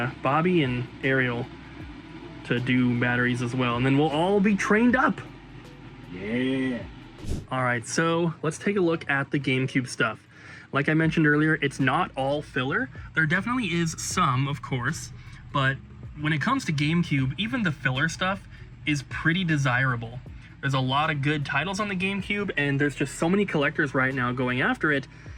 Bobby and Ariel to do batteries as well, and then we'll all be trained up. Yeah. All right, so let's take a look at the GameCube stuff. Like I mentioned earlier, it's not all filler. There definitely is some, of course, but when it comes to GameCube, even the filler stuff is pretty desirable. There's a lot of good titles on the GameCube, and there's just so many collectors right now going after it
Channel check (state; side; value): identical; both; correlation 1.00